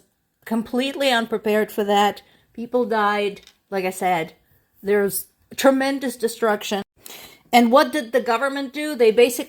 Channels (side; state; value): both; identical; correlation 1.00